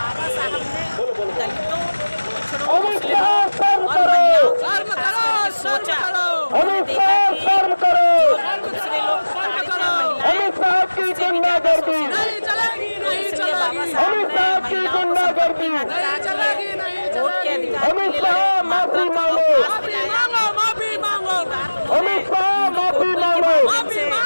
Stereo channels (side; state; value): both; inverted; correlation -1.00